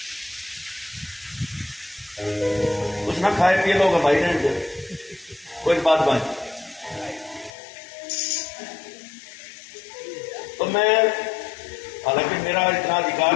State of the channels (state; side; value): drops out; right; at 7.5 s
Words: कुछ ना खाए पिए लोग भाई रहने, कोई बात बात। तो मैं, हालांकि मेरा इतना अधिकार